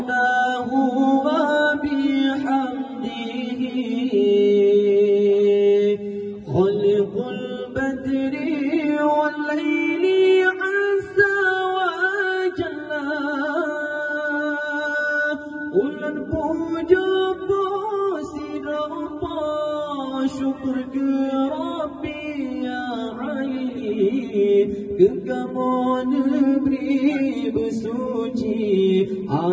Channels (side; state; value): both; identical; correlation 1.00